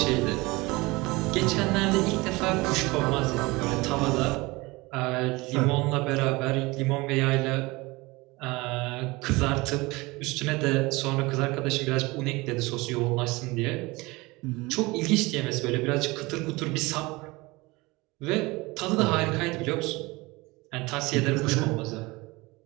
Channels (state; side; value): quieter; left; 22.8 dB